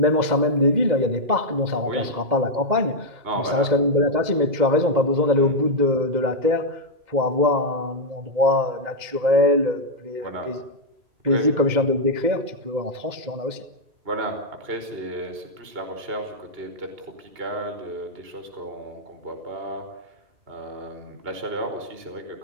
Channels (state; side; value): late; left; 2.1 ms